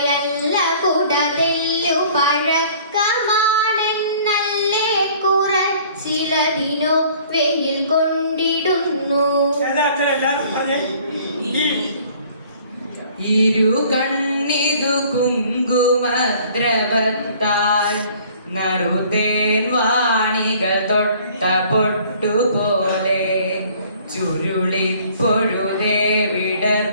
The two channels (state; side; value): inverted; both; correlation -0.54